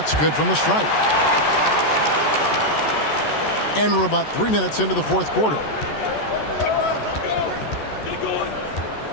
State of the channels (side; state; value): right; late; 14 ms